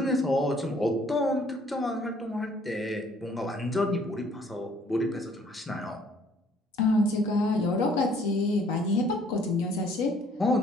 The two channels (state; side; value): normal; both; correlation 0.60